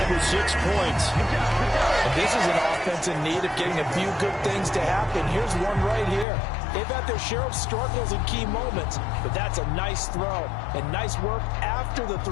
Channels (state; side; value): drops out; right; at 6.2 s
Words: with 6 points. And this is an offense in need of getting a few good things to happen. Here's one right here. They've had their share of struggles in key moments, but that's a nice throw and nice work after the